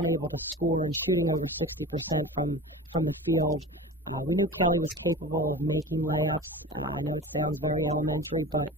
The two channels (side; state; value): both; normal; correlation 0.34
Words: able to score and shooting over 60% from the field. We knew Kelly was capable of making layups. I know it sounds very elementary, but